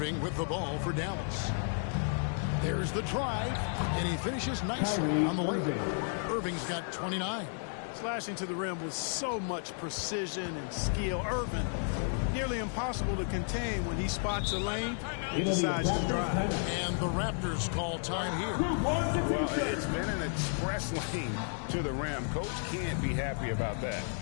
with the ball for Dallas. There's the drive, and he finishes nicely on the way. Irving's got 29. Slashing to the rim with so much precision and skill. Irving, nearly impossible to contain when he spots a lane and decides to drive. And the Raptors call time here. Well, it's been an express lane to the rim. Coach can't be happy about that.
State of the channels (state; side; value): silent; right; 56 dB below the other